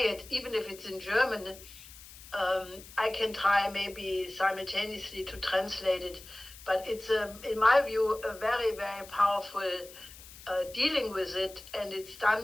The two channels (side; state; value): left; noise; hiss, 18 dB below the sound